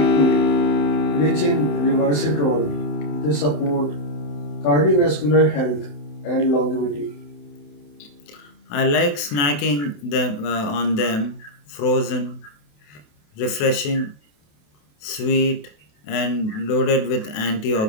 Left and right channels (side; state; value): right; late; 28 ms